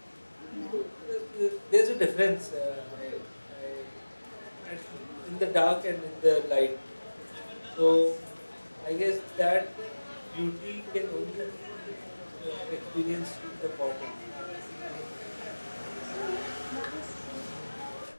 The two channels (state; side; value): inverted; both; correlation -1.00